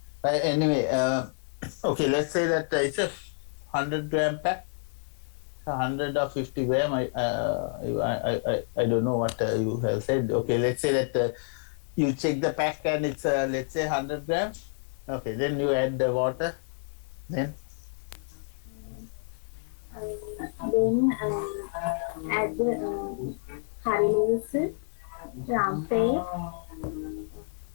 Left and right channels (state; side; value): silent; right; 59 dB below the other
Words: Anyway, okay, let's say that it's a 100-gram pack, 100 or 50 gram. I don't know what you have said. Okay, let's say that you check the pack and it's let's say 100 grams. Okay, then you add the water. Then add the curry leaves, rampe,